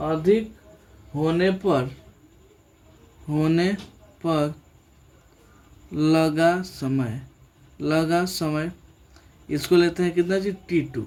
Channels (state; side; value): identical; both; correlation 1.00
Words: होने पर लगा समय इसको लेते हैं कितना जी? T2।